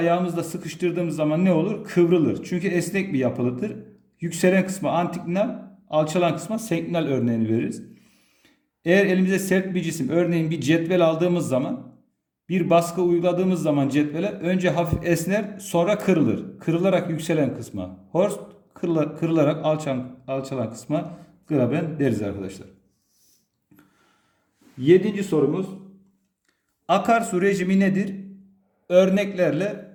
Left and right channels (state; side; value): identical; both; correlation 1.00